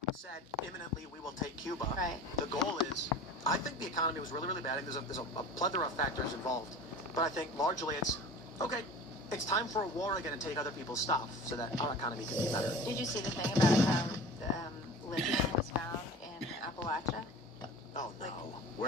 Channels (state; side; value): normal; both; correlation 0.39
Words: said imminently we will take Cuba. Right. The goal is, I think the economy was really, really bad. There's a plethora of factors involved, but I think largely it's okay. It's time for a war again and take other people's stuff so that our economy can be better. Did you see the thing about how lithium was found in Appalachia? Oh no!